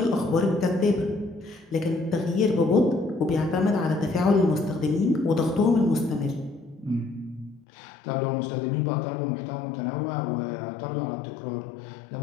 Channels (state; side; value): drops out; right; at 7.7 s